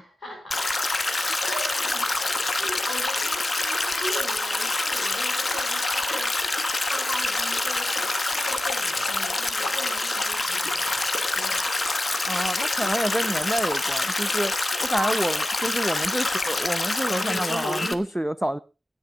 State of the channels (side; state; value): both; normal; correlation 0.93